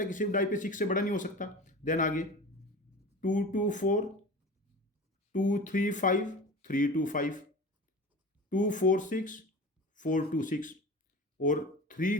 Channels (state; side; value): normal; both; correlation 0.34